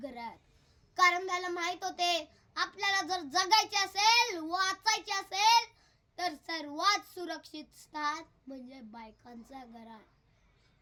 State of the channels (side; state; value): both; identical; correlation 1.00